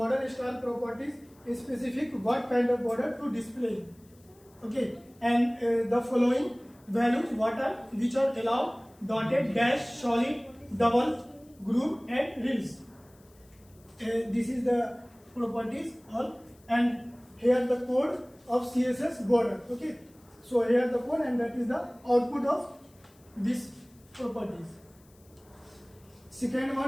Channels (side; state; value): left; noise; hiss, 30 dB below the sound